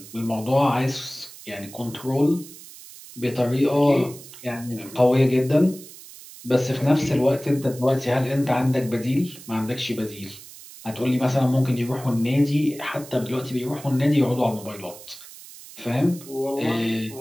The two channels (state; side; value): noise; right; hiss, 17 dB below the sound